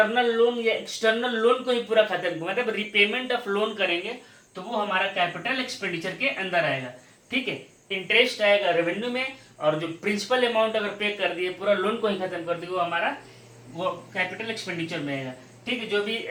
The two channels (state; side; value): identical; both; correlation 1.00